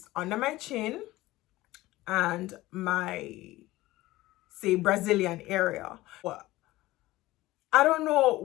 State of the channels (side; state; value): right; quieter; 17.9 dB